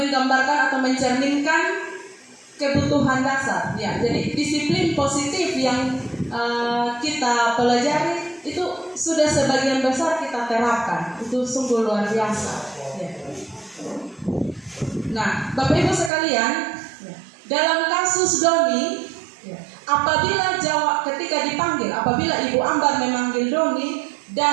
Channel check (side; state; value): left; drops out; at 16.1 s